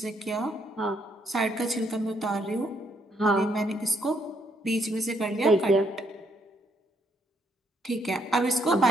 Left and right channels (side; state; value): both; normal; correlation 0.72